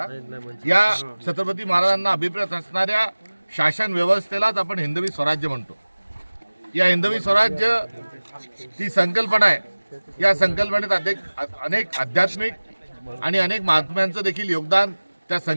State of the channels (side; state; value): both; inverted; correlation -1.00